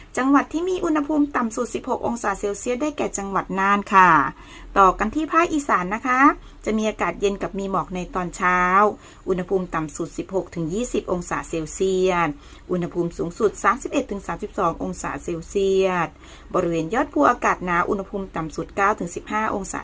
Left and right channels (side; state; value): both; identical; correlation 1.00